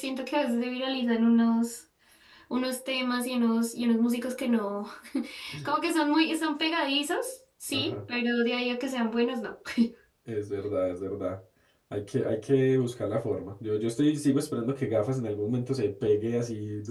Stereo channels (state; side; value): identical; both; correlation 1.00